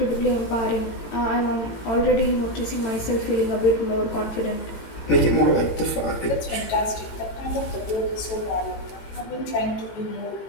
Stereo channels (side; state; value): right; late; 18 ms